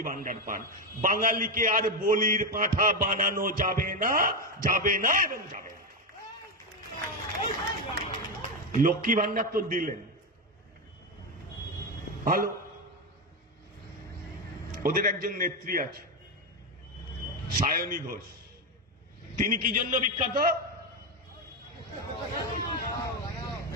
ভান্ডার পান। বাঙালিকে আর বলির পাঁঠা বানানো যাবে না, যাবে না এবং যাবে না। লক্ষ্মী ভান্ডার তো দিলেন, ভালো। ওদের একজন নেত্রী আছে, সায়নী ঘোষ। তিনি কি জন্য বিখ্যাত?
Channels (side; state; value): both; normal; correlation 0.09